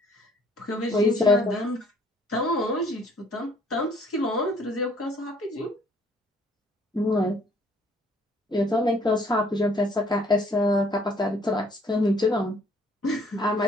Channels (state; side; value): normal; both; correlation 0.61